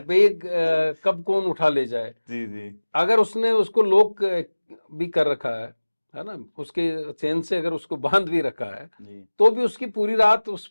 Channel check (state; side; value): inverted; both; correlation -1.00